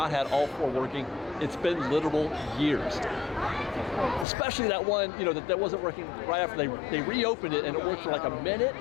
had all 4 working. It's been literal years. Especially that one, that wasn't working right after they reopened it, and it worked for like a minute,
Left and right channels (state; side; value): drops out; right; at 4.2 s